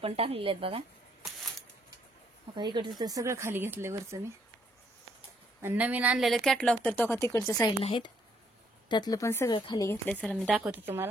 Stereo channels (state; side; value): normal; both; correlation 0.70